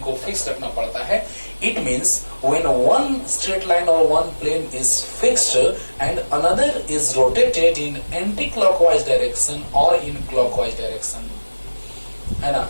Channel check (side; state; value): both; inverted; correlation -1.00